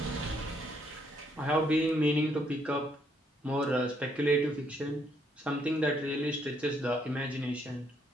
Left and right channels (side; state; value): both; normal; correlation 0.71